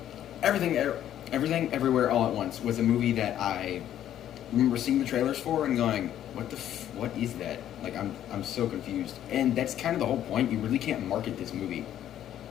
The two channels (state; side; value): quieter; right; 11.2 dB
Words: Everything, Everywhere, All at Once was a movie that I remember seeing the trailers for and going, what is that? Like I'm so confused. And that's kind of the whole point. You really can't market this movie.